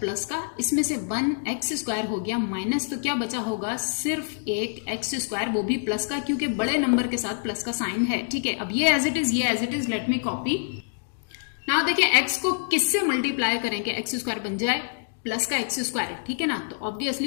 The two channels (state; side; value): silent; right; digital silence